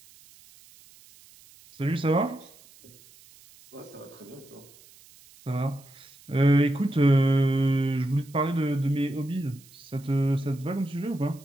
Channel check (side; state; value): right; noise; hiss, 25 dB below the sound